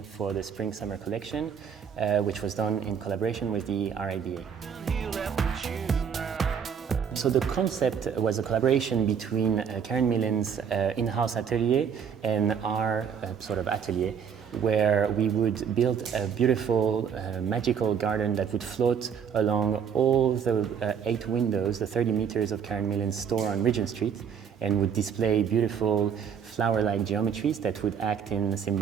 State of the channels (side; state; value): left; quieter; 7.4 dB